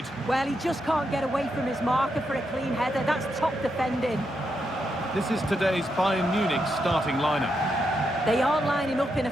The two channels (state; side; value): normal; both; correlation 0.83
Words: Well, he just can't get away from his marker for a clean header. That's top defending. This is today's Bayern Munich starting lineup. They are lining up in a